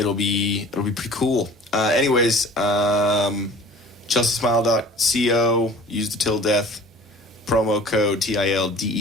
be pretty cool. Anyways, ChelseaSmile.co. Use the Till Death promo code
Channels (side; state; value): both; normal; correlation 0.45